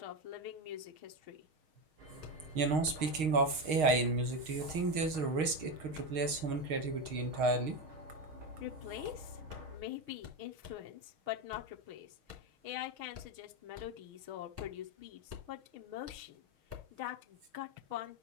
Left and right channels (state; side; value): late; left; 6.4 ms